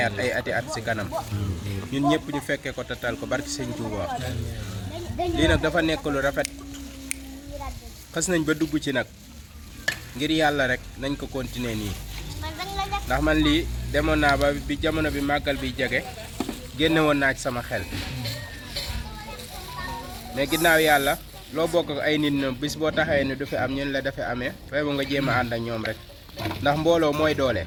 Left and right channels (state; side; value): identical; both; correlation 1.00